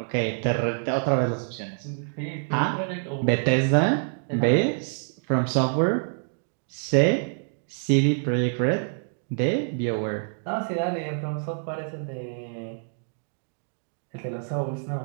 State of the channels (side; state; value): left; silent; 61 dB below the other